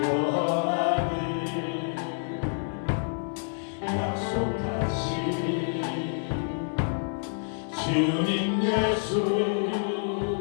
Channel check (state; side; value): silent; right; digital silence